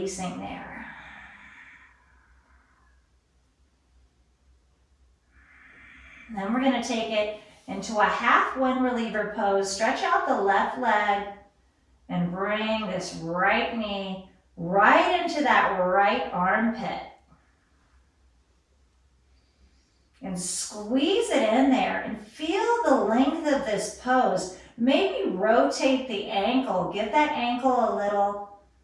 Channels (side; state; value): both; identical; correlation 1.00